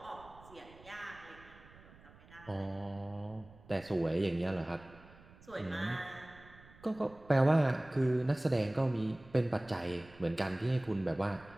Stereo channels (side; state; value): right; noise; rumble, 22 dB below the sound